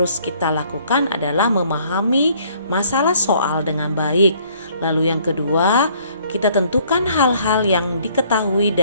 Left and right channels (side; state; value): both; inverted; correlation -0.61